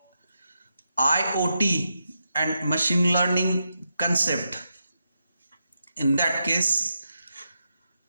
IoT and machine learning concept, in that case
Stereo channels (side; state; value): both; inverted; correlation -0.85